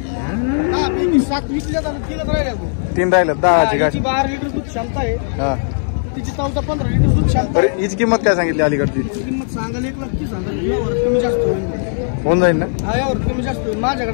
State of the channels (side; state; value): right; silent; 62 dB below the other